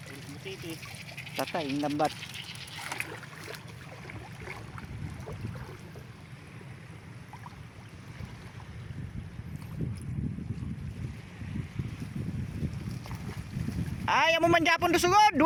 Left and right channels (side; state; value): both; identical; correlation 1.00